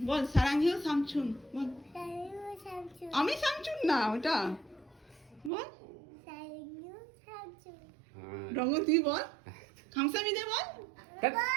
বল, সারাংহিও সামচুন বল। আমি সামচুন না, ওটা বল। রঙ্গন তুই বল, খামসামিদা বল।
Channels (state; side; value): drops out; left; at 5.5 s